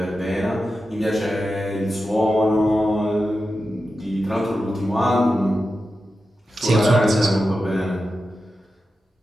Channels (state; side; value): normal; both; correlation 0.91